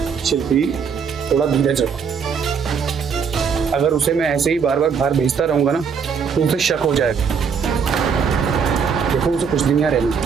शिल्पी, थोड़ा धीरज रखो। अगर उसे मैं ऐसे ही बार बार बाहर भेजता रहूंगा ना तो उसे शक हो जाएगा। देखो उसे कुछ दिन यहाँ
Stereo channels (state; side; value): quieter; left; 6.4 dB